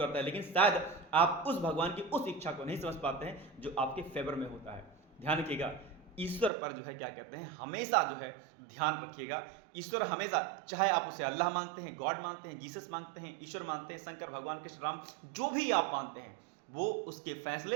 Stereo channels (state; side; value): drops out; left; at 6.5 s